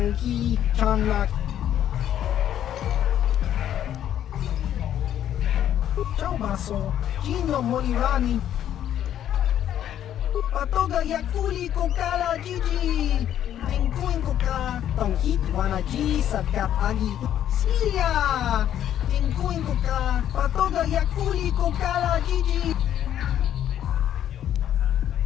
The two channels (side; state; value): right; quieter; 10.7 dB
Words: Chanlak. Ciao Baso, Gino Molirani. Patoga Yakuli Kokala Gigi, Tinkuin Koka, Tong Hitwanaji, Sakat Agi, Silia, Tinkuin Koka, Patoga Yakuli Kokala Gigi.